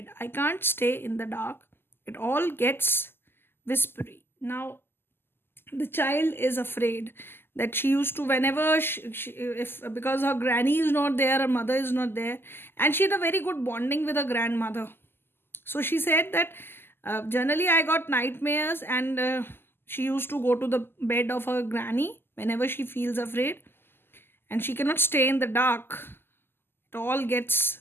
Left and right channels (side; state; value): right; late; 0.11 ms